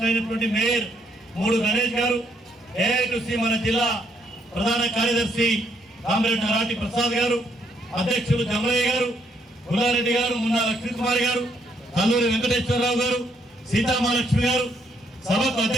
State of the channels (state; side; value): normal; both; correlation 0.72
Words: మేయర్ మూడు గణేష్ గారు, ఏఐటీసీ మన జిల్లా ప్రధాన కార్యదర్శి కామ్రేడ్ నరాటి ప్రసాద్ గారు, అధ్యక్షులు జమలయ్య గారు, గుల్లారెడ్డి గారు, మున్నా లక్ష్మీకుమారి గారు, కల్లూరి వెంకటేశ్వరరావు గారు, సీతామహాలక్ష్మి గారు, సభకు